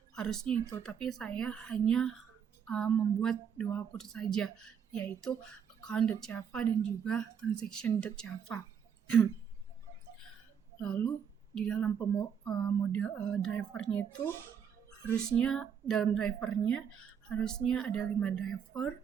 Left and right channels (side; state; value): left; quieter; 7.7 dB